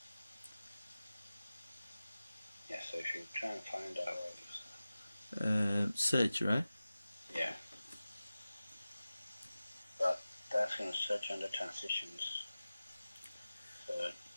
Yeah, so if you try and find out what it is. Search, right? Yeah. But that's going to search under transitions. So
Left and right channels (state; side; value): inverted; both; correlation -0.96